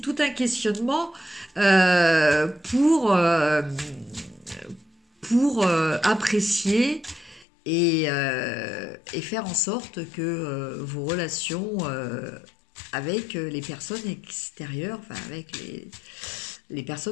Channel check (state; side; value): drops out; right; at 7.5 s